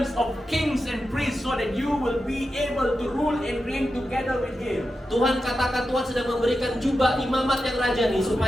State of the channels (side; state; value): both; normal; correlation 0.90